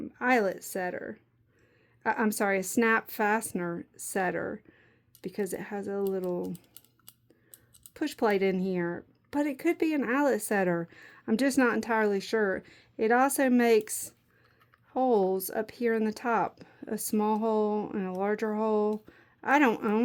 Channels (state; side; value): identical; both; correlation 1.00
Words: setter. I'm sorry, a snap fastener setter, because it has a little push plate in here, but it could be an eyelet setter. I'm just not entirely sure. It also makes holes up here in the top, a small hole and a larger hole. I don't